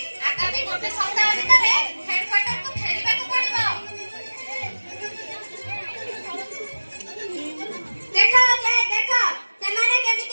ଆଗାମୀ ଗୋଟେ ସପ୍ତାହ ଭିତରେ ହେଡକ୍ୱାର୍ଟରକୁ ଫେରିବାକୁ ପଡ଼ିବ ଦେଖ ଯେ ଦେଖ ସେମାନେ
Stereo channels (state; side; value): inverted; both; correlation -1.00